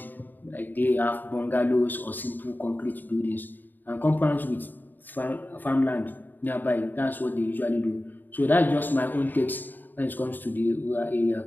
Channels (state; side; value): late; right; 0.089 ms